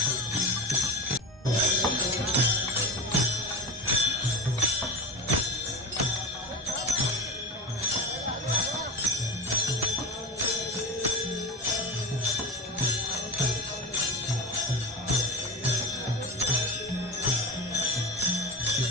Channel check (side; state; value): both; normal; correlation 0.26